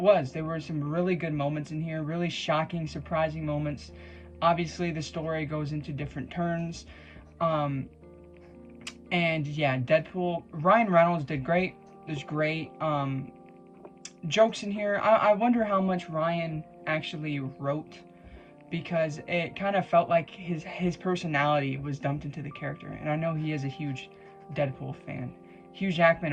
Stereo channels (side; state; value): both; identical; correlation 1.00